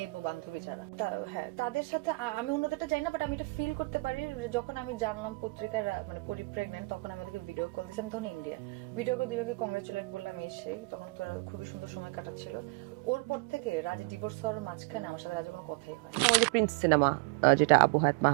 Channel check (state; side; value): quieter; left; 26.6 dB